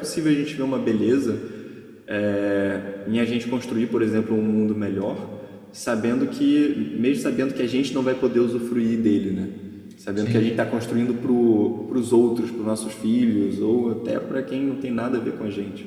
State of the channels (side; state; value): both; identical; correlation 1.00